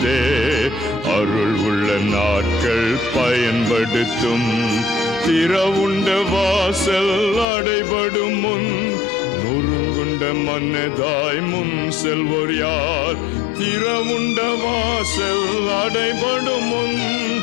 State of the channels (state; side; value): drops out; right; at 7.5 s